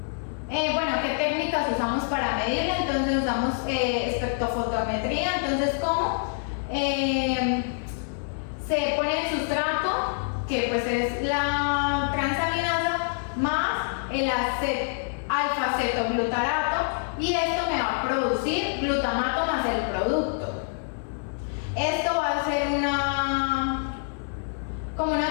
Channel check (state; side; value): silent; right; 61 dB below the other